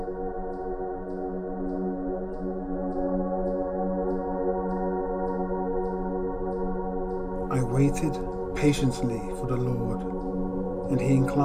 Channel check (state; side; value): identical; both; correlation 1.00